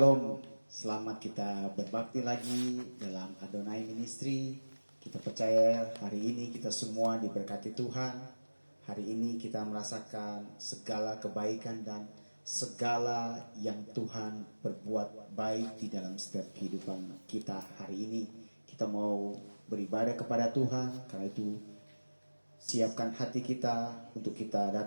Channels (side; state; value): both; inverted; correlation -1.00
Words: selamat kita berbakti lagi dalam Adonai Ministry. Kita percaya hari ini kita semua diberkati Tuhan. Hari ini kita merasakan segala kebaikan dan segala yang Tuhan berbuat baik di dalam setiap kehidupan kita hari ini. Kita mau beribadah kepada Tuhan, karena itu siapkan hati kita untuk kita